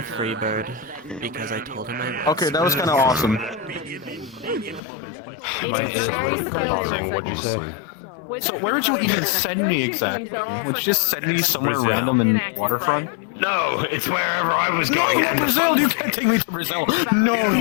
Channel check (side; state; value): right; drops out; at 4.8 s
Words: Freebird because I told him I would. Okay, that was kind of awesome. What'd you say? So where would you even send me exactly? Would you just send me somewhere Brazil. random in waterfront? No, it's wherever I was going. No, Brazil! You can't take me to Brazil! No,